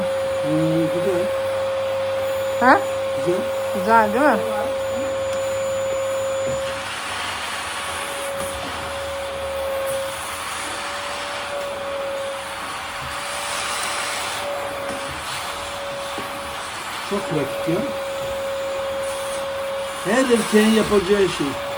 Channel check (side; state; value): both; identical; correlation 1.00